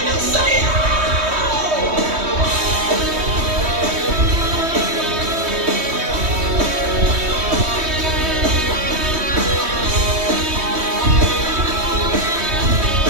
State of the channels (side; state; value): left; late; 3.2 ms